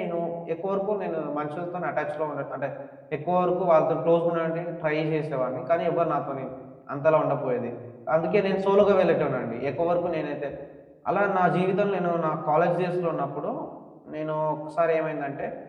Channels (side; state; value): both; identical; correlation 1.00